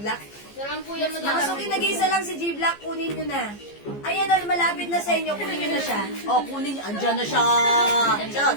Sarang po yan, Mga suki, nag-iisa lang si G-Black. Kunin nyo na. Ayan, malapit na sa inyo. Kunin nyo na siya. Oh, kunin nyo. Andyan na siya.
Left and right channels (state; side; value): late; right; 15 ms